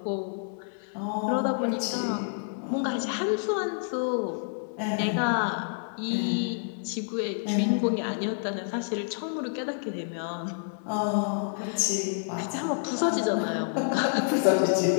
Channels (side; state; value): right; silent; digital silence